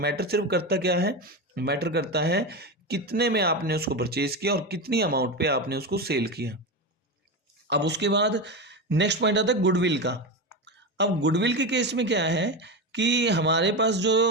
सिर्फ करता क्या है, मैटर करता है कितने में आपने उसको परचेज किया और कितनी अमाउंट पे आपने उसको सेल किया। अब उसके बाद नेक्स्ट पॉइंट आता है गुडविल का। अब गुडविल के केस में क्या है कि हमारे पास जो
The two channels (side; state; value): both; normal; correlation 0.18